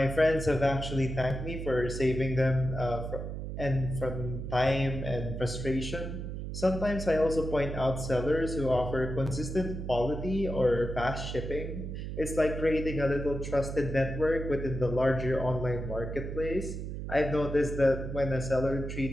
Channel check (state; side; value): noise; right; hum, 6 dB below the sound